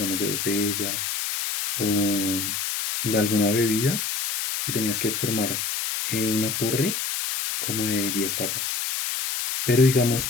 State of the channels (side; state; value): left; noise; hiss, 2 dB below the sound